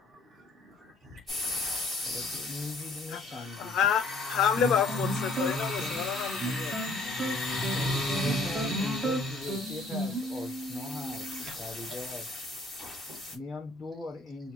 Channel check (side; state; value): right; quieter; 3.2 dB